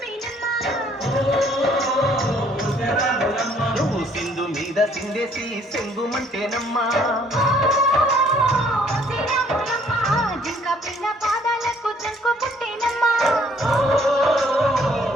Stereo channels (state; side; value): normal; both; correlation 0.62